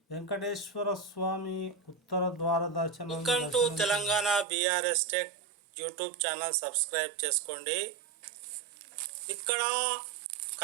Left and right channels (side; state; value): left; drops out; at 4.5 s